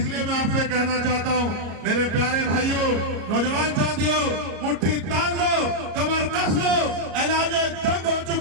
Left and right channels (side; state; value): left; late; 34 ms